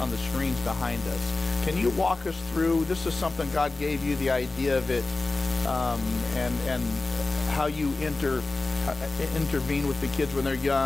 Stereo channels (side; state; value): right; quieter; 3.3 dB